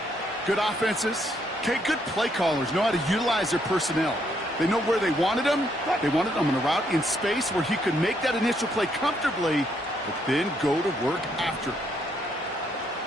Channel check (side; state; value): both; normal; correlation 0.73